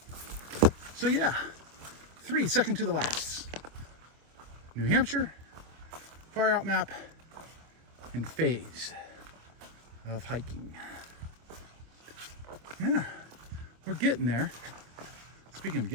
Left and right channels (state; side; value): late; left; 25 ms